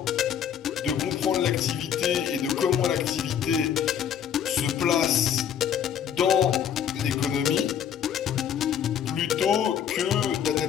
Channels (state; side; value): quieter; right; 8.8 dB